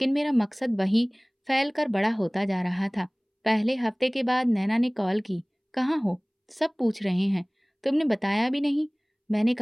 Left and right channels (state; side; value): identical; both; correlation 1.00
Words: मेरा मकसद वही फैल कर बड़ा होता जा रहा था। पहले हफ्ते के बाद नैना ने कॉल की। कहाँ हो? सब पूछ रहे हैं। तुमने बताया भी नहीं। मैंने